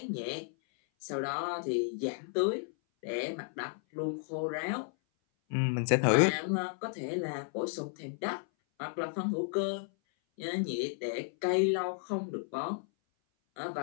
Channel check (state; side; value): silent; right; 56 dB below the other